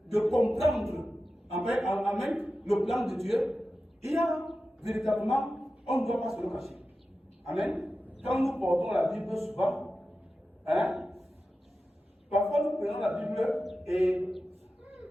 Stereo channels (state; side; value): normal; both; correlation 0.93